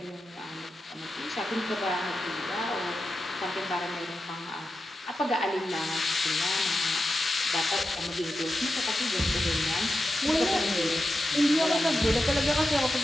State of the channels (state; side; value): normal; both; correlation 0.90